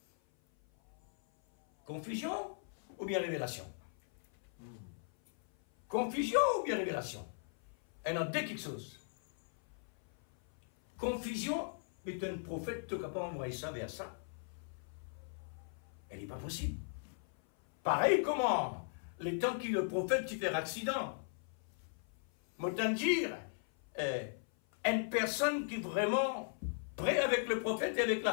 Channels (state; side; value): silent; right; 53 dB below the other